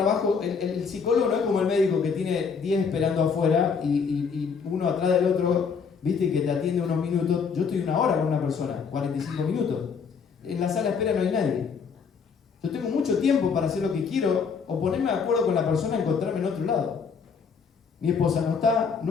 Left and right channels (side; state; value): right; quieter; 5.9 dB